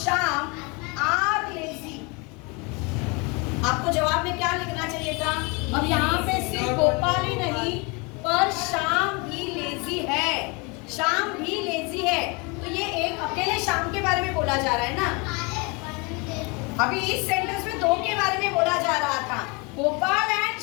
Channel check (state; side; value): quieter; right; 29.5 dB